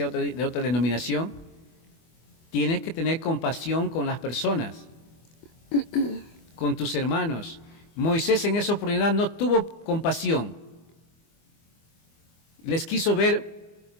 de otra denominación, tienes que tener compasión con las personas, con tus hermanos. Moisés en esa oportunidad no tuvo compasión, les quiso ver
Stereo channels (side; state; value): right; late; 24 ms